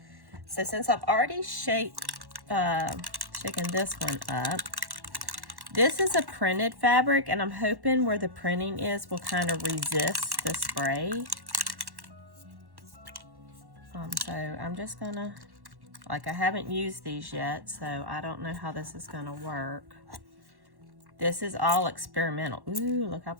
So since I've already shaken this one up, this is a printed fabric, and I'm hoping where the printing is will kind of resist the spray. So I'm just gonna, like, I haven't used these yet, so I don't know how this is gonna work. This is all experimental. Ooh, look how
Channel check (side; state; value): left; late; 1.1 ms